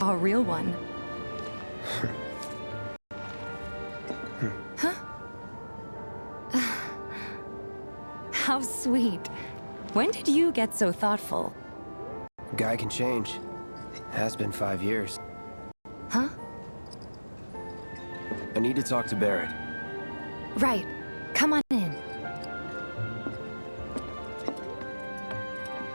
a real one. Huh? How sweet. When did you get so thoughtful? Guy can change. Has been 5 years. Huh? I need to talk to Barrett. Right. Come on in.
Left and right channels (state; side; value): inverted; both; correlation -1.00